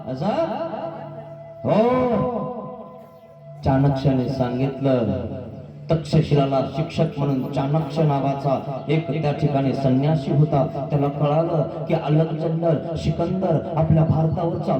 असं हो, चाणक्याने सांगितलं. तक्षशिलाला शिक्षक म्हणून चाणक्य नावाचा एक त्या ठिकाणी संन्यासी होता. त्याला कळालं की अलेक्झांडर सिकंदर आपल्या भारतावर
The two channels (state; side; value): identical; both; correlation 1.00